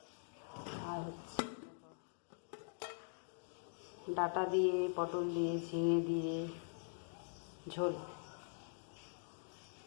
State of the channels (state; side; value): silent; right; digital silence